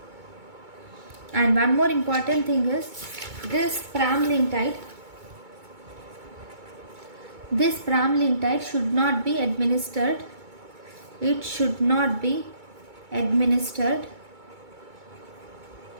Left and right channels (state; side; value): late; left; 2.2 ms